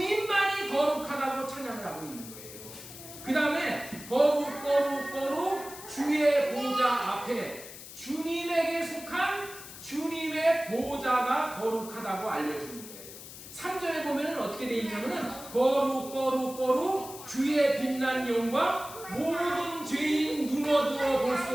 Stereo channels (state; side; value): noise; left; hiss, 14 dB below the sound